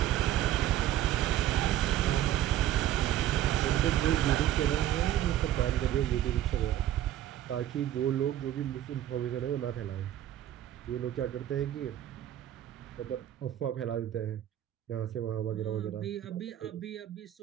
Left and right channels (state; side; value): quieter; left; 12.3 dB